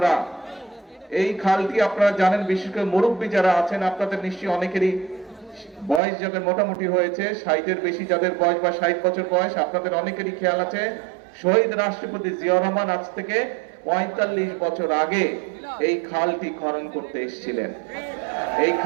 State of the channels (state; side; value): drops out; left; at 6.0 s